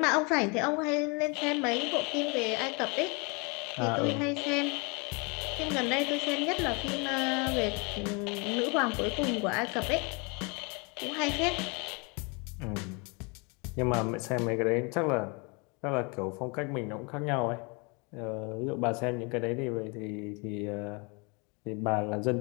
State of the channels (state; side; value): quieter; right; 31.2 dB